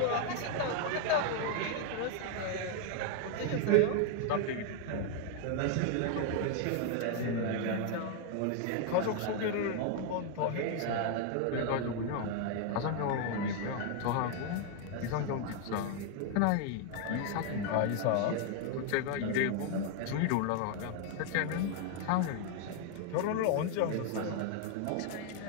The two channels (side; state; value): both; different; correlation 0.01